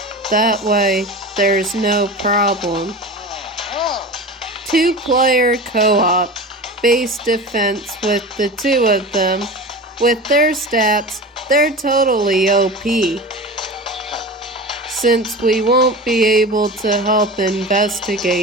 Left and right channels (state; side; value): normal; both; correlation 0.31